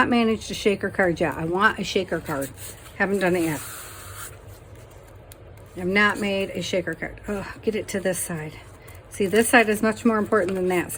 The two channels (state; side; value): identical; both; correlation 1.00